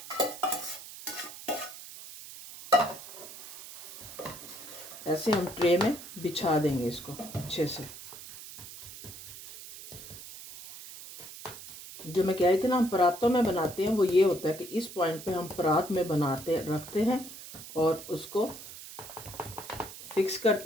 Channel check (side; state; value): right; noise; hiss, 14 dB below the sound